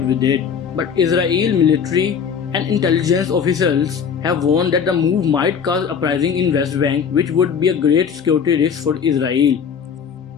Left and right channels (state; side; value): quieter; right; 6.9 dB